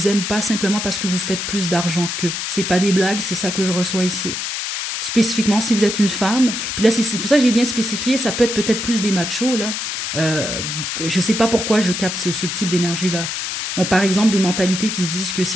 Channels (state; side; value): noise; left; hiss, 3 dB below the sound